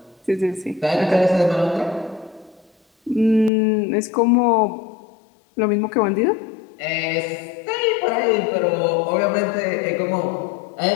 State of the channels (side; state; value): right; drops out; at 3.5 s